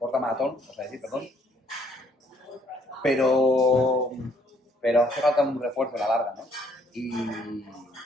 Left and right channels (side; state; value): both; normal; correlation 0.66